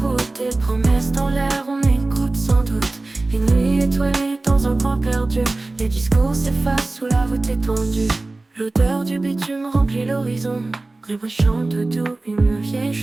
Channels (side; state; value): left; quieter; 3.1 dB